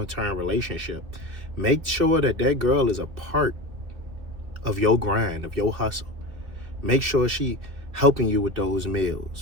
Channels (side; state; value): left; late; 3.1 ms